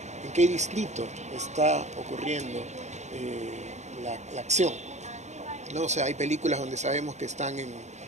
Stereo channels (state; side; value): late; left; 0.33 ms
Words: en qué distrito está ocurriendo la acción, ¿no? O sea, hay películas donde sabemos que están